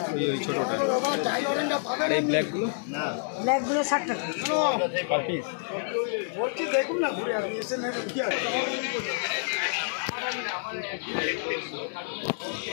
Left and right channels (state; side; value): silent; right; digital silence